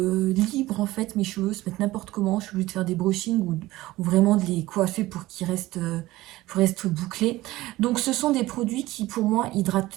libre en fait. Mes cheveux se mettent n'importe comment. Je suis obligée de faire des brushings ou vraiment de les coiffer pour qu'ils restent bouclés. Donc ce sont des produits qui pour moi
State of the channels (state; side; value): quieter; left; 17.7 dB